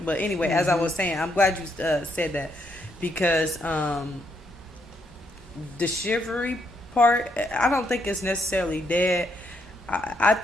But anyway, as I was saying, I'm glad you said that because the chivalry part, I don't think it's necessarily dead. I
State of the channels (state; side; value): normal; both; correlation 0.75